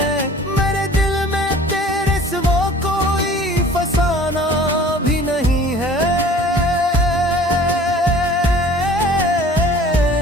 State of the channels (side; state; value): both; normal; correlation 0.48